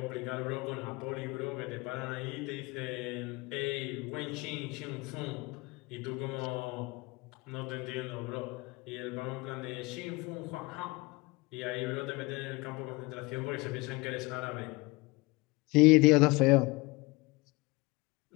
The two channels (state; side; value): quieter; right; 24.4 dB